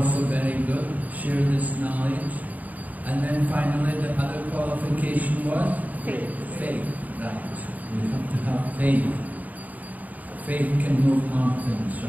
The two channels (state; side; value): late; left; 0.077 ms